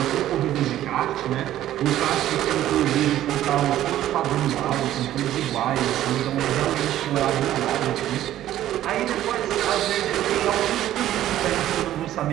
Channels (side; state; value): left; quieter; 12.9 dB